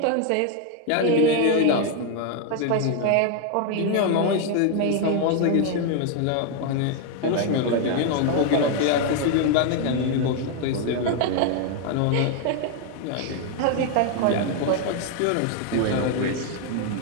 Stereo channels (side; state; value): both; different; correlation 0.00